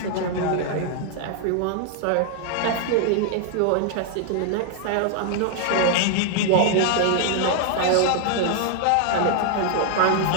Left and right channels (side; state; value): both; different; correlation 0.00